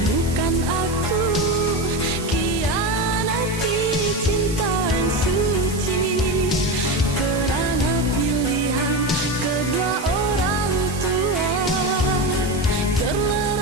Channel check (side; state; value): right; noise; hiss, 13 dB below the sound